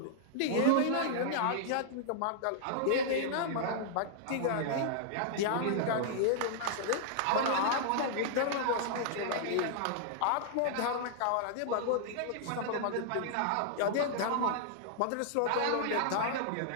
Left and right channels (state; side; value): different; both; correlation -0.01